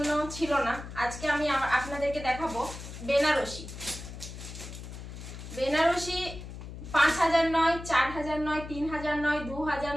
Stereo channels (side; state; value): left; noise; hum, 11 dB below the sound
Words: ছিল না। আজকে আমি আপনাদেরকে দেখাবো বেনারসি। বেনারসি 5000 নয়, 4000 নয়, 3000 নয়, 2000